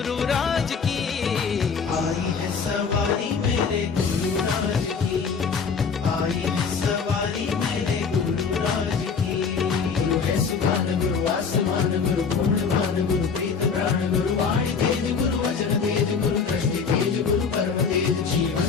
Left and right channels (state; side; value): quieter; right; 5.7 dB